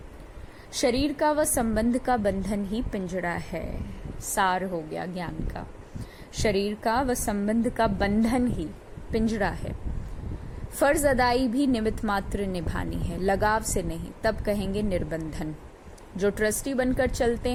शरीर का व संबंध का बंधन ही पिंजड़ा है। सार हो गया ज्ञान का। शरीर का व संबंध का बंधन ही पिंजड़ा है। फर्ज अदाई भी निमित्त मात्र निभानी है, लगाव से नहीं, तब कहेंगे निर्बंधन। जो ट्रस्टी बनकर चलते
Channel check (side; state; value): both; identical; correlation 1.00